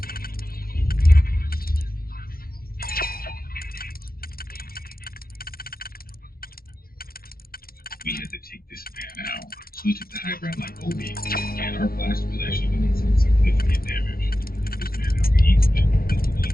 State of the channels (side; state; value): right; late; 0.43 ms